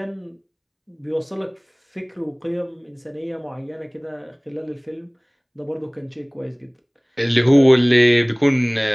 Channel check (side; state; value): both; identical; correlation 1.00